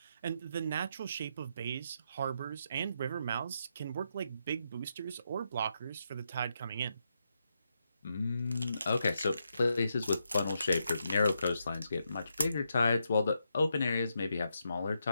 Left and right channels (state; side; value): inverted; both; correlation -0.82